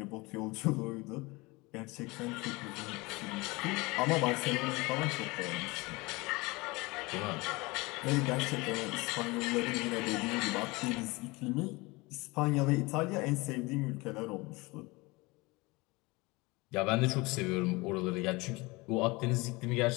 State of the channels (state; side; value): quieter; right; 23.9 dB